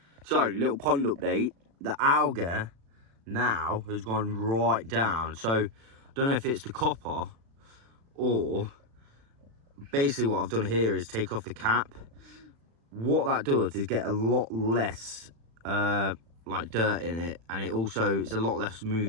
So, little pond update. The algae now has gone right down. So, I don't know if it's the copper or basically what I've done here is take off the cap. What that does is get a lot less like dirt in it, and it also it's a lot less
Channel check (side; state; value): left; late; 36 ms